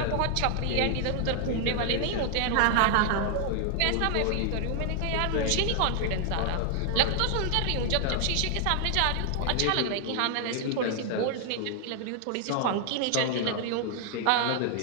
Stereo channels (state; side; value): different; both; correlation 0.00